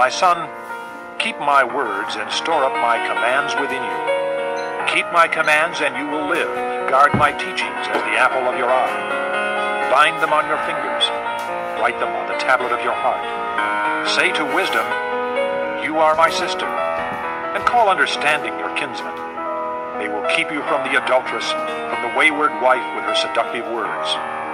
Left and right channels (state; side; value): identical; both; correlation 1.00